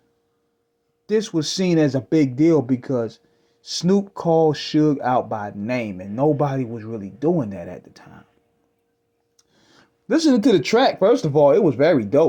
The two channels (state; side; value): identical; both; correlation 1.00